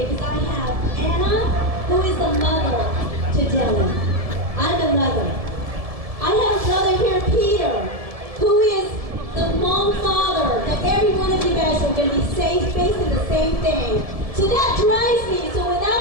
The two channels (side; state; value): left; late; 1.7 ms